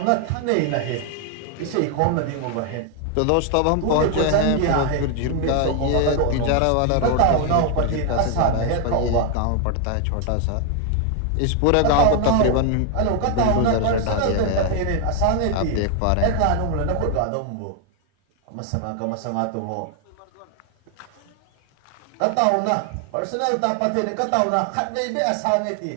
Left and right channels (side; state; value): both; different; correlation 0.00